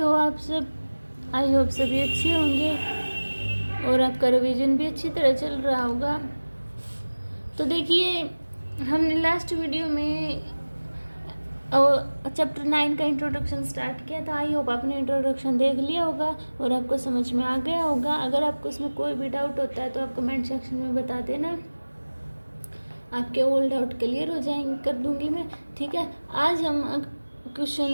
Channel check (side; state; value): both; inverted; correlation -1.00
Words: आप सब। आई होप सभी अच्छे होंगे और आपका रिवीजन भी अच्छी तरह चल रहा होगा। तो देखिए, हमने लास्ट वीडियो में चैप्टर 9 का इंट्रोडक्शन स्टार्ट किया था। आई होप आपने इंट्रोडक्शन देख लिया होगा और आपको समझ में आ गया होगा। अगर आपको इसमें कोई भी डाउट होता है तो आप कमेंट सेक्शन में बता देना, आपके ऑल डाउट क्लियर हो जाएंगे, कर दूंगी मैं। ठीक है, आज हम क्वेश्चन